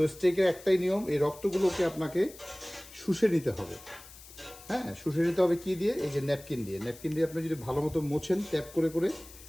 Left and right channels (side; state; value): left; noise; hiss, 19 dB below the sound